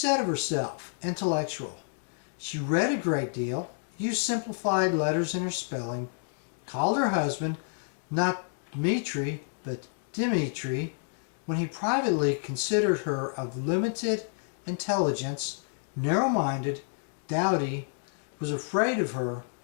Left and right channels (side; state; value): right; silent; digital silence